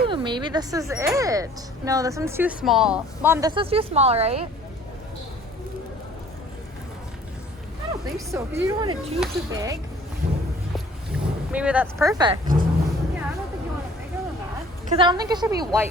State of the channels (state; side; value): normal; both; correlation 0.53